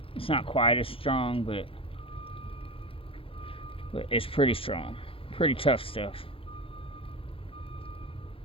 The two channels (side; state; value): right; late; 0.27 ms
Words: It's not quite as strong, but it's pretty strong. Pretty tough stuff.